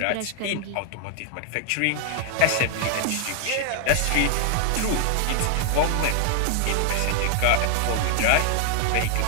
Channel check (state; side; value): different; both; correlation 0.00